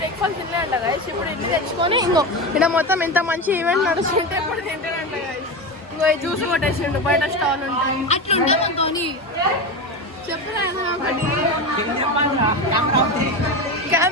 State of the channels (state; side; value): normal; both; correlation 0.20